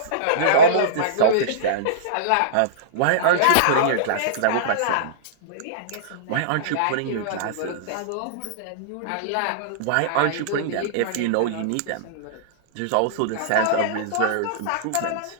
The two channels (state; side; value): different; both; correlation -0.03